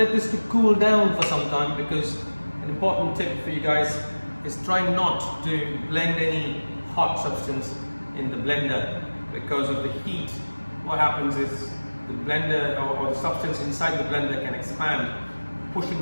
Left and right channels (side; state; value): both; inverted; correlation -1.00